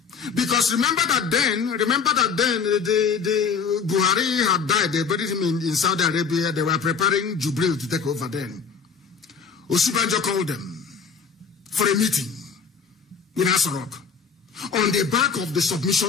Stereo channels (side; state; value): right; quieter; 5.9 dB